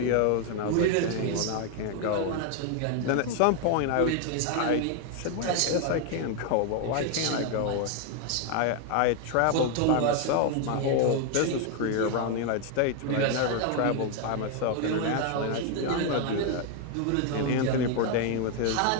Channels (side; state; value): both; different; correlation 0.01